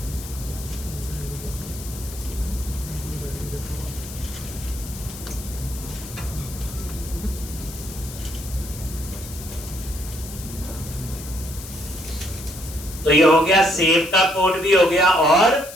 तो ये हो गया, सेव का कोड भी हो गया और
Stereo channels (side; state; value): left; noise; hiss, 13 dB below the sound